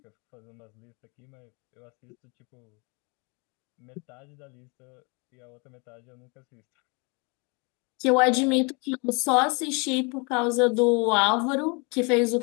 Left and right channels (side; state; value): right; quieter; 31.5 dB